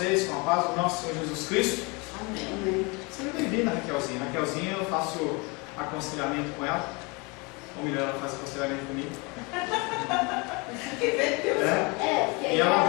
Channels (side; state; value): right; quieter; 28.5 dB